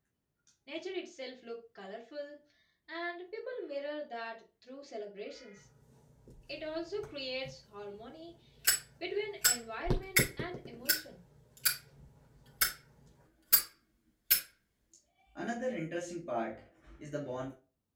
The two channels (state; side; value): identical; both; correlation 1.00